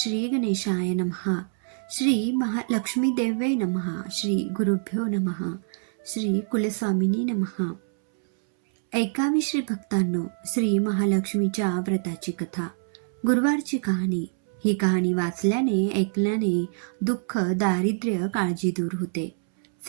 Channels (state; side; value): silent; left; 61 dB below the other